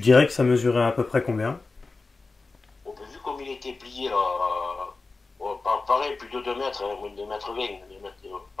dirais que ça mesurait à peu près combien? On a vu comme il était plié là. Pareil, plus de 2 mètres, hein, moins de 2 mètres 20, 2 mètres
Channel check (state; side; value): quieter; right; 3.8 dB